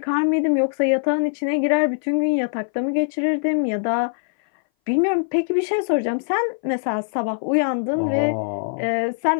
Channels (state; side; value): silent; right; 60 dB below the other